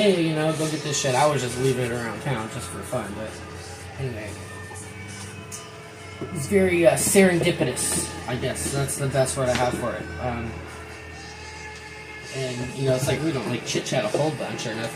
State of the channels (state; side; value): identical; both; correlation 1.00